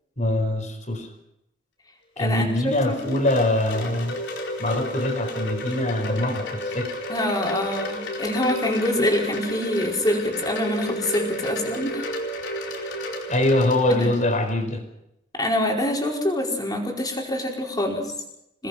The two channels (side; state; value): both; normal; correlation 0.45